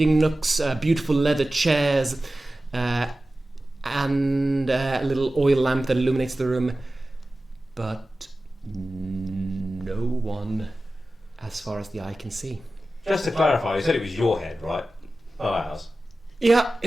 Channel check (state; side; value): normal; both; correlation 0.95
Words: nooks, beautiful leather chairs, and a little oil lamp that illuminates the room, but no one as far as the eye can see. Just to clarify, you said it was your head, right? Not ours. Yeah,